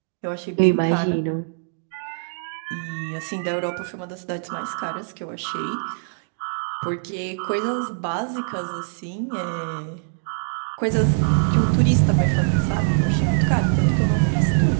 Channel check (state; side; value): silent; left; digital silence